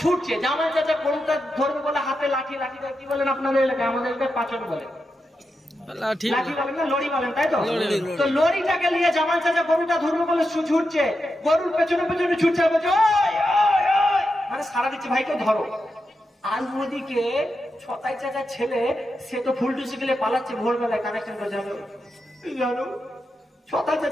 ছুটছে। জামাল চাচা গরুটা ধরবে বলে হাতে লাঠি, লাঠিটা কি বলেন আপনাদের এলাকায়? আমাদের এলাকায় পাচন বলে, লাঠি বলেন না, লড়ি বলেন, তাই তো? তো লড়িটাকে নিয়ে জামাল চাচা গরুটা ধরবে বলে ছুটছে, গরুর পেছনে পেছনে ছুটছে, বলছে মানে সারা দিচ্ছে ভাইকে ধরো। আর ওদিকে ছতাই চাচার ছেলে সে তো ফুলটুসি গেলে পালাচ্ছে, ভোরবেলায় কানেকশন করে জানো জানো। ছতাই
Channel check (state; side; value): normal; both; correlation 0.88